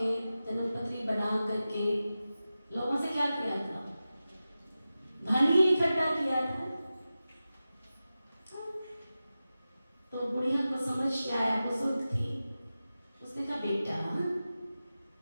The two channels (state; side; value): inverted; both; correlation -0.94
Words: जन्मपत्री बना करके लोगों से क्या किया था, धन ही इकट्ठा किया था। तो बुढ़िया को समझ के आया, बुजुर्ग थी, उसने कहा बेटा